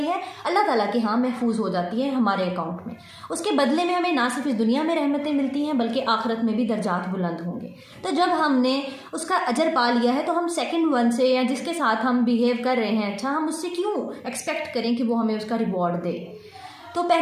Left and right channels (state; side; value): identical; both; correlation 1.00